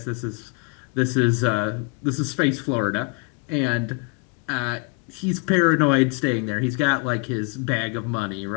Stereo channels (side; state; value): right; quieter; 35.2 dB